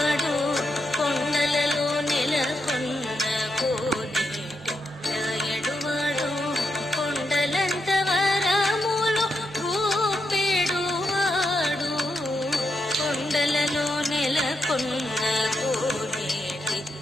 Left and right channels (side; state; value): right; noise; hum, 27 dB below the sound